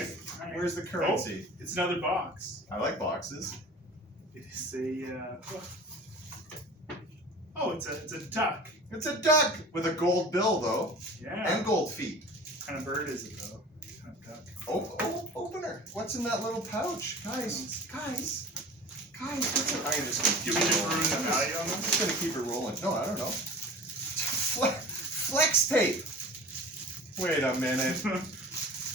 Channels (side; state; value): both; normal; correlation 0.39